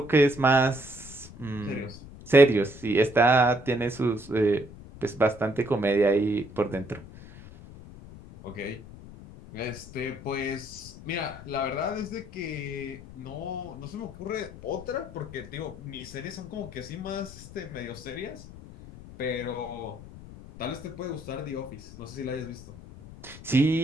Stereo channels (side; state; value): left; noise; rumble, 16 dB below the sound